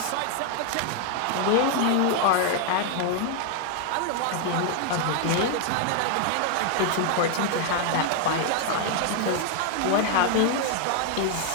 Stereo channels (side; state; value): both; different; correlation 0.00